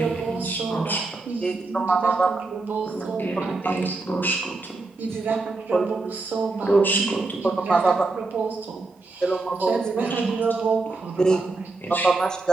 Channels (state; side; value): quieter; left; 3.5 dB